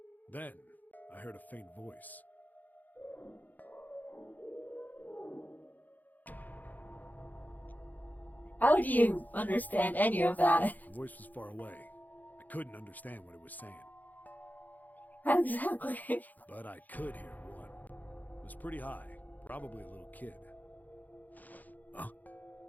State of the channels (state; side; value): late; right; 0.082 ms